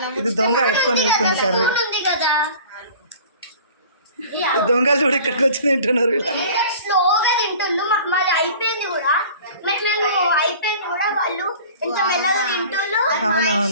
ఇది దొంగ ఎత్తుకొని వెళ్తుంది కర్రీ. కదా దొంగలు చూడు ఇక్కడికి వచ్చి తింటున్నారు. స్లోగా తింటుండ్రు. మాది అయిపోయింది కూడా, వాళ్ళు ఎంత మెల్లగా తింటుండ్రు.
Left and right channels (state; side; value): inverted; both; correlation -0.44